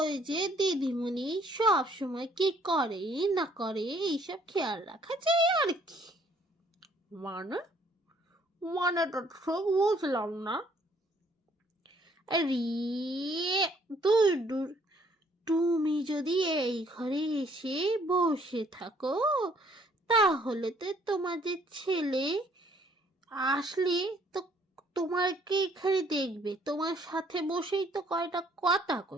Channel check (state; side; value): normal; both; correlation 0.63